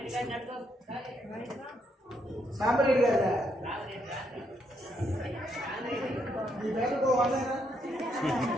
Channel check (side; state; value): both; normal; correlation 0.76